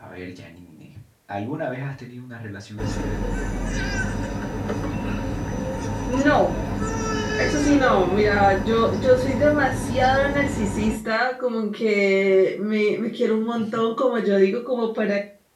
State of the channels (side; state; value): both; identical; correlation 1.00